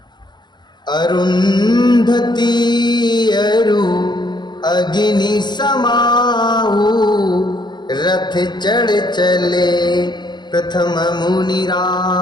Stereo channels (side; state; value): right; late; 0.21 ms